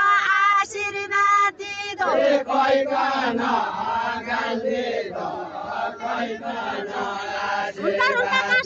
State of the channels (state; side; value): identical; both; correlation 1.00